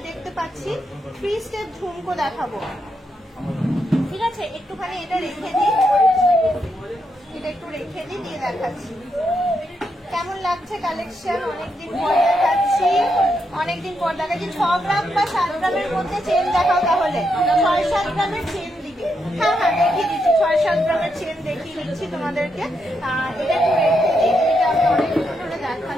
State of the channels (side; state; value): both; normal; correlation 0.81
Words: দেখতে পাচ্ছি 3 স্টেপ ঝুমকো দেখাবো, ঠিক আছে? একটুখানি এটা রেখে দিই, এটা একটু রেখে দিই, দিয়ে দেখাচ্ছি কেমন লাগছে কালেকশন। অনেকদিন পর দেখাচ্ছি, অনেকদিন পর দেখাচ্ছি। 6 গ্রাম বা 7 গ্রামের মধ্যে চেন দেখাও, তাহলে 6-7 গ্রামের চেন দিবে। হ্যাঁ হ্যাঁ দেখিয়ে দিচ্ছি, 6-7 গ্রামের চেন দেখিয়ে দিচ্ছি তোমাদেরকে। এটা একটু রেখে দিই, এটা আমি অনেকদিন ধরে